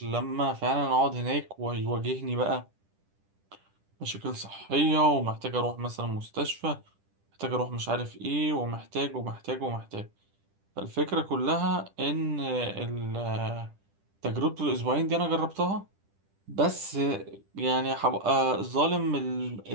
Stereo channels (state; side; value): late; left; 10 ms